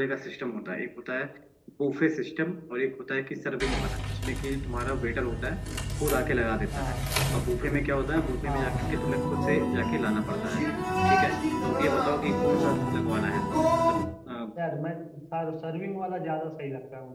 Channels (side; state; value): both; identical; correlation 1.00